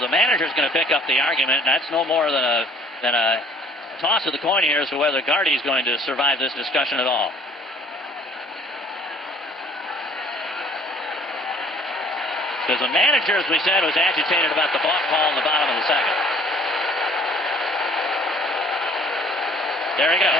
manager's going to pick up the argument. That's no more than a toss of the coin here as to whether Gardy's going to survive this discussion at all. Because the manager, as we said, was agitated about the balk call in the bottom of the second. There he goes.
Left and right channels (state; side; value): normal; both; correlation 0.55